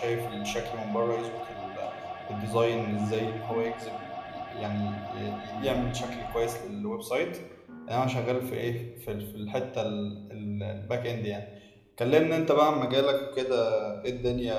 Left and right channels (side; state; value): both; identical; correlation 1.00